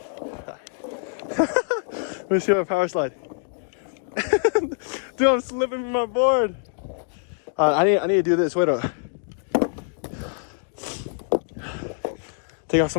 Let me see my power slide. Dude, I'm slipping from my board. I need to do this. Wait up. Take off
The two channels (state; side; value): silent; right; 58 dB below the other